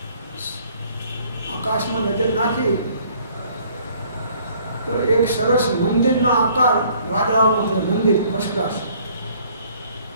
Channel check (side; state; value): both; inverted; correlation -0.59